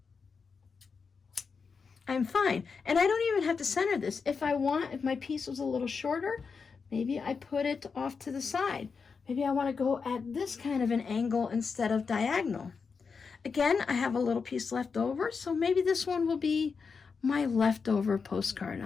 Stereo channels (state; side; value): quieter; right; 5.3 dB